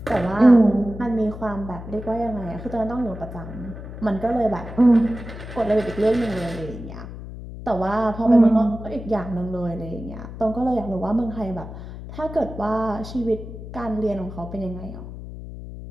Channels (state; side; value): noise; left; hum, 11 dB below the sound